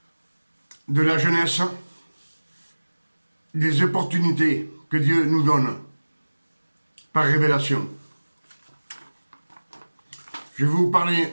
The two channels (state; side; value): inverted; both; correlation -1.00